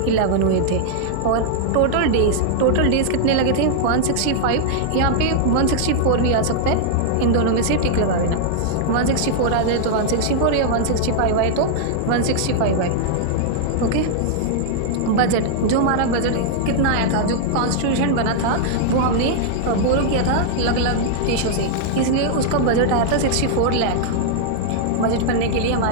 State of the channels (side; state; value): both; different; correlation -0.01